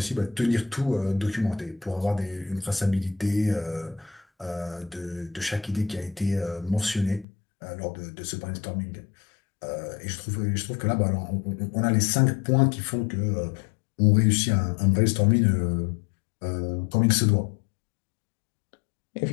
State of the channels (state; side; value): drops out; right; at 7.2 s